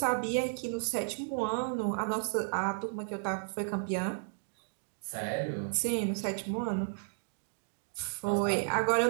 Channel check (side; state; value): left; silent; digital silence